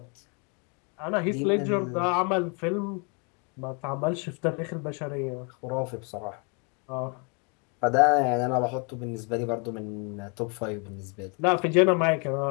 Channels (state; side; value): quieter; right; 35.0 dB